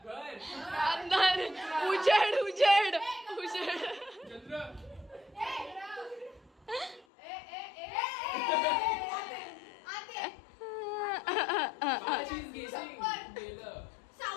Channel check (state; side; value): drops out; right; at 7.1 s